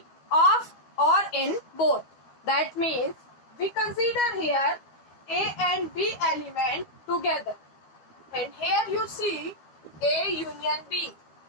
or in both. That means we consider here A and B element together. And here you see A union B.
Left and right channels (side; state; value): right; late; 12 ms